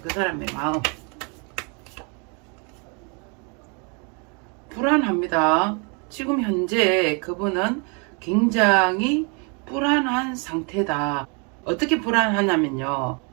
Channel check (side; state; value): left; quieter; 34.5 dB